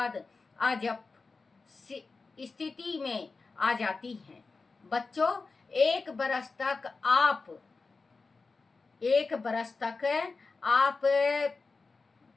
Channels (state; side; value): quieter; right; 4.1 dB